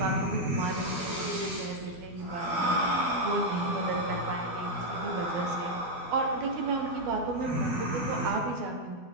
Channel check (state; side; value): late; left; 12 ms